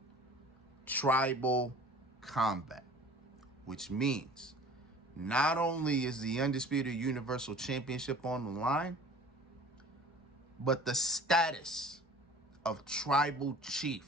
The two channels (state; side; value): normal; both; correlation 0.46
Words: tribal combat, which means not only is the Undisputed Universal Championship on the line, but the status of tribal